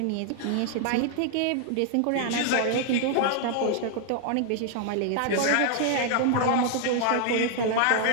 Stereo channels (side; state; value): both; different; correlation 0.00